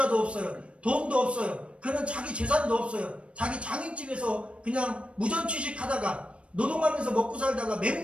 없어요. 돈도 없어요. 그는 자기 재산도 없어요. 자기 장인집에서 그냥 무전취식하다가 노동하면서 먹고 살다가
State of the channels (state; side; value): late; left; 0.060 ms